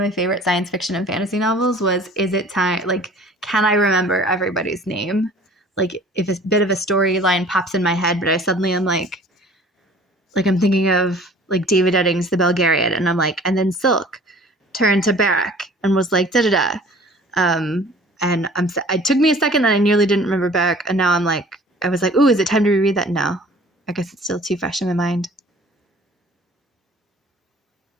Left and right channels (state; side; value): normal; both; correlation 0.49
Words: favorite science fiction and fantasy novels was, is it time, like, can I remember everybody's name? Like, if a bit of a storyline pops in my head, but I suddenly am like I'm thinking of, like, David Eddings' The Belgariad, and I'm like, and then Silk turned to Barak and was like, da-da-da. And it took me a second, and I nearly didn't remember Barak, and now I was like, ooh, is it time to reread that? No. I guess it's still too fresh in my mind.